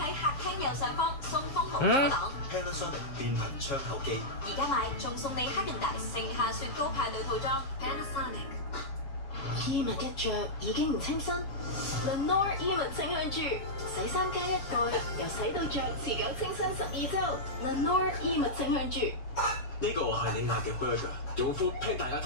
客廳右上方送風無阻擋。Panasonic 變頻窗口機，而家買仲送你黑人大盛夏雪糕派對套裝。Panasonic 衣物一着已經唔清新 ，Lenore 衣物清香珠，洗衫加一蓋，由洗到着持久清新12週。Lenore 衣物清香珠。呢個係你嗌嘅 burger， 用 Food Panda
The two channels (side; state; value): right; late; 7.3 ms